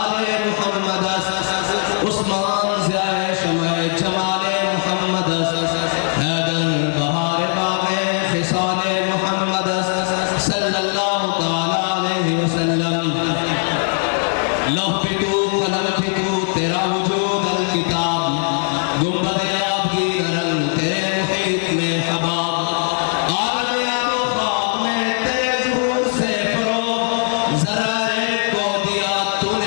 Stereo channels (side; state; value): right; silent; 60 dB below the other